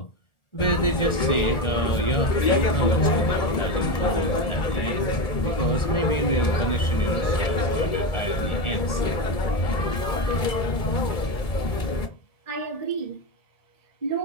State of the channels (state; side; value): late; right; 2.3 ms